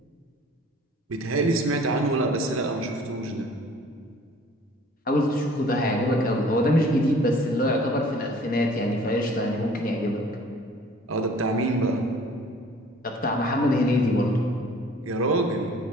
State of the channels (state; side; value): normal; both; correlation 0.51